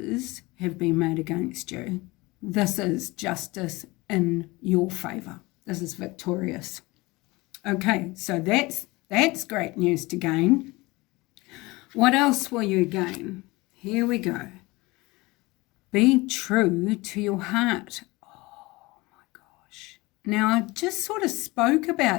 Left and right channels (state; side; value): quieter; right; 22.5 dB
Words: have been made against you. This is justice in your favour. This is victorious. Okay, so that's great news to gain. What else will you gain? Here we go. Be true to your heart. Now, I just sort of spoke